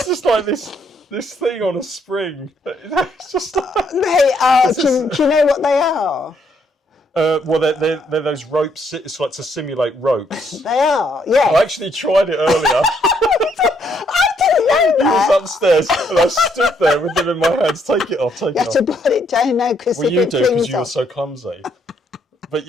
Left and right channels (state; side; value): normal; both; correlation 0.71